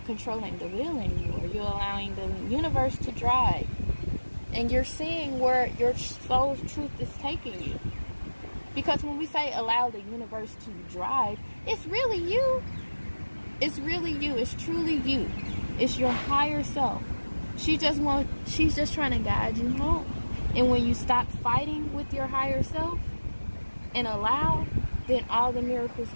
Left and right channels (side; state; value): both; inverted; correlation -1.00